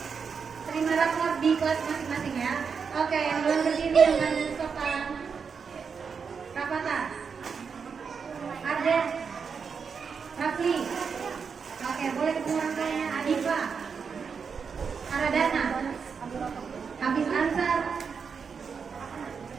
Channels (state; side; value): quieter; left; 6.0 dB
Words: di kelas masing-masing ya. Oke, yang belum berdiri yang badan sopan. Rapata, Arden, Rafli. Oke, boleh ketemu orang tuanya. Adifa, Aradana, Hafiz Ansar,